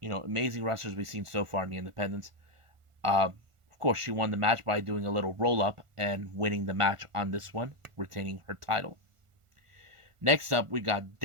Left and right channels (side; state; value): left; late; 1.4 ms